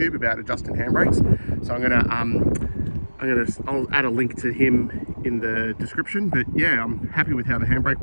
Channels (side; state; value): both; inverted; correlation -1.00